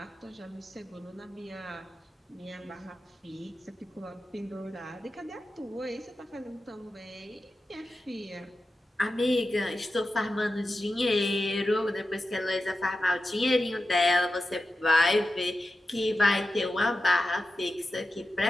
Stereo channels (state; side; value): normal; both; correlation 0.92